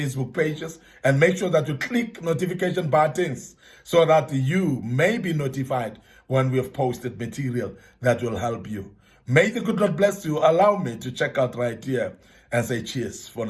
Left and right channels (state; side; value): identical; both; correlation 1.00